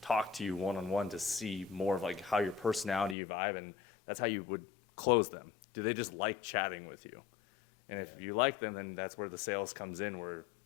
talk to you one-on-one to see more of like how your personality vibe, and that's how you would close them. Do they just like chatting with you? And if you like them, then that's where the sales comes in, where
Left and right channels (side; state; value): right; drops out; at 3.2 s